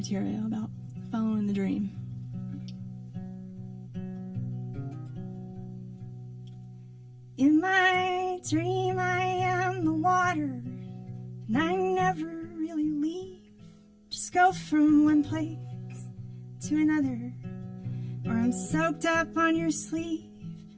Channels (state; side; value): identical; both; correlation 1.00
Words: about following the dream. In my dream I am the water, and I never really leave. Just go from one place to another, or I'm soaked up on your sleeve,